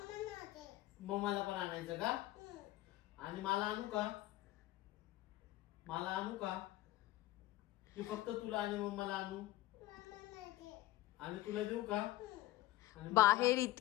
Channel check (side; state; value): right; quieter; 16.3 dB